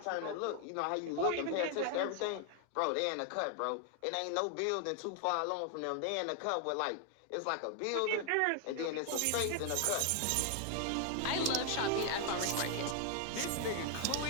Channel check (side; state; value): both; different; correlation 0.00